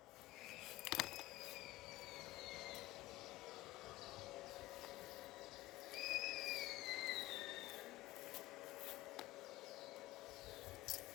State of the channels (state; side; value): quieter; right; 17.5 dB